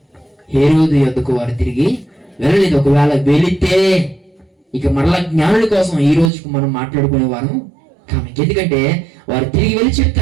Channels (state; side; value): drops out; left; at 6.3 s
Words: హేరోదు యొద్దకు వారు తిరిగి వెళ్ళలేదు. ఒకవేళ వెళితే ఇక మరలా జ్ఞానుల కోసం ఈ రోజుకు మనం మాట్లాడుకునేవారు కానీ, ఎందుకంటే వారు తిరిగి వెళ్ళి